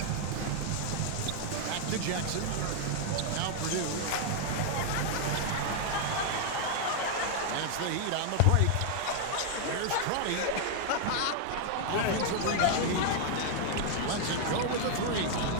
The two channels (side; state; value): both; different; correlation 0.00